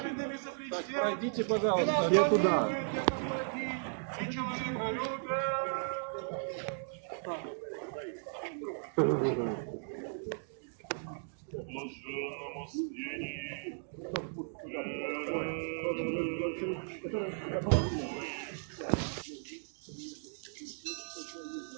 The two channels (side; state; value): left; silent; digital silence